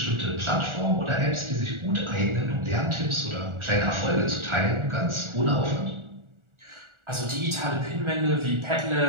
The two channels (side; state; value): left; late; 1.4 ms